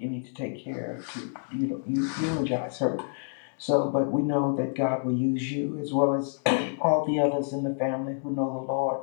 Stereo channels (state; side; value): silent; right; 59 dB below the other